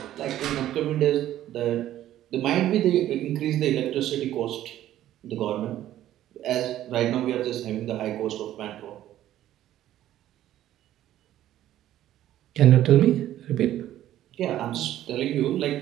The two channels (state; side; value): quieter; left; 12.8 dB